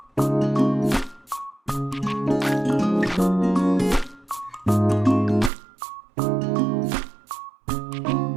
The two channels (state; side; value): drops out; left; at 5.5 s